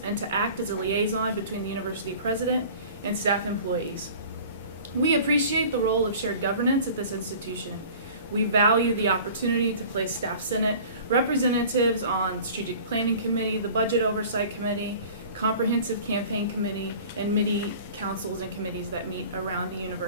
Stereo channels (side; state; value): both; inverted; correlation -0.44